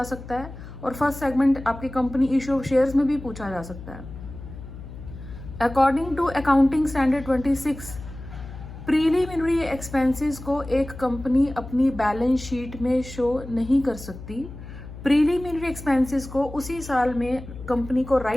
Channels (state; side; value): noise; left; hum, 13 dB below the sound